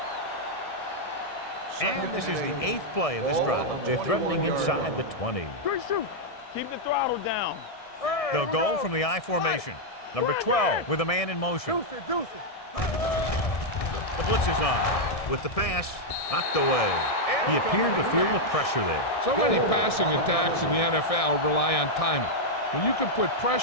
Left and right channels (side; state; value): right; late; 1.6 ms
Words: And this is the 8th play of this drive. They're threatening inside the 20. Good shoot. Keep the throttle down. They'll go from the I formation. Number 12 with a man in motion. Deuce it. The blitz is on. With the pass, knocked away. He appeared to feel the pressure there. So many passing attacks in the NFL rely on timing. When you can put